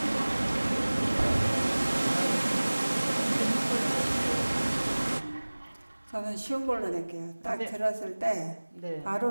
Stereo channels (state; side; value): inverted; both; correlation -1.00